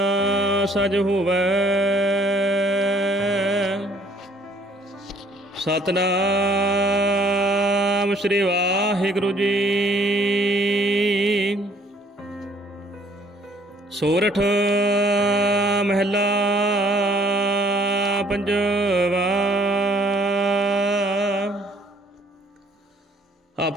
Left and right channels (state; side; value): normal; both; correlation 0.61